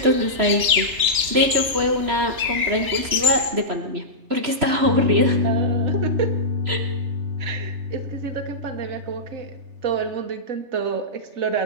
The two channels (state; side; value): late; left; 3.3 ms